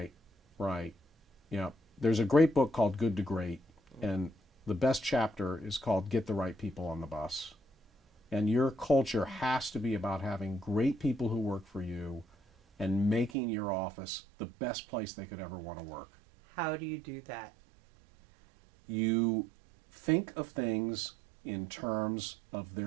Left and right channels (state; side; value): drops out; left; at 13.4 s